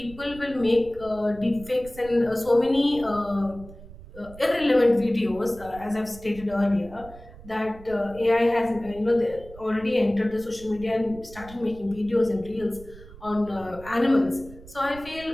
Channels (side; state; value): right; noise; rumble, 18 dB below the sound